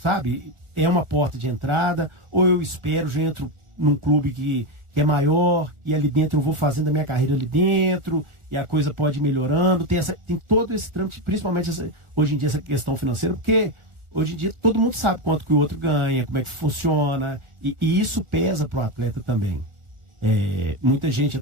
É uma porta de entrada, ou eu espero, já entro num clube que é maior, e ali dentro eu vou fazendo a minha carreira ali dentro, e a coisa pode ir melhorando, tem todo esse trâmite, principalmente hoje em dia essa questão financeira, porque hoje em dia todo mundo sabe quanto que o outro ganha, como é que funciona, e isso pesa pro atleta também. Muita gente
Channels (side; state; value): left; late; 1.4 ms